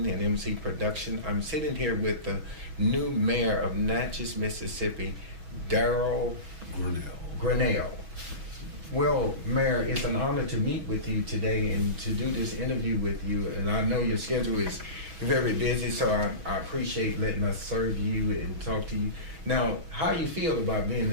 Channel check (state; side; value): late; left; 6.1 ms